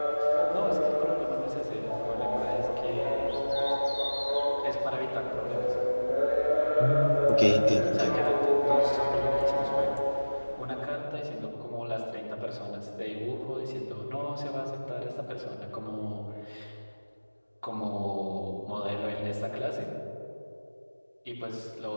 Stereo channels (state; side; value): inverted; both; correlation -1.00